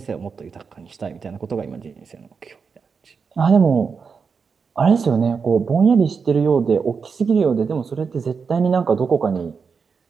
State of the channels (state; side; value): quieter; left; 5.6 dB